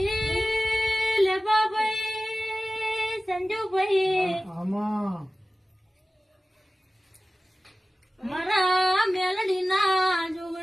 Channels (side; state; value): both; normal; correlation 0.96